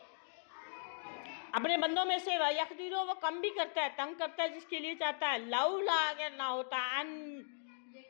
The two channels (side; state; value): right; silent; digital silence